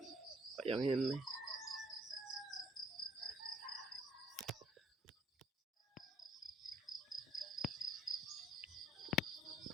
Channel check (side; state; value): both; normal; correlation 0.61